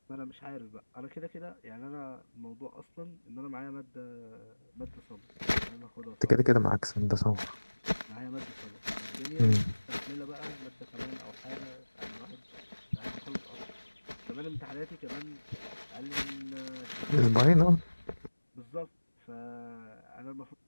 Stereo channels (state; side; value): inverted; both; correlation -1.00